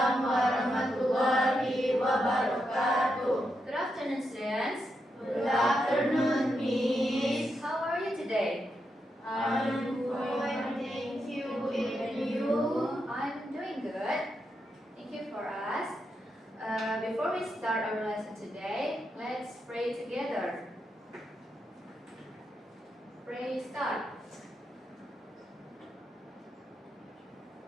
warahmatullahi wabarakatuh. Good afternoon, students. Good afternoon, Miss. How are you today? I'm fine, thank you. And you? I'm doing good. Thank you for us. Before we start our lesson today, let's pray together. Pray start.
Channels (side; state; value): both; normal; correlation 0.84